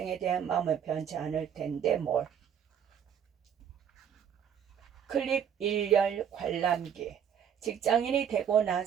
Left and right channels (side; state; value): left; quieter; 8.5 dB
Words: 대한 마음은 변치 않을 텐데 뭘. 클립 1열 관람기. 직장인이 되고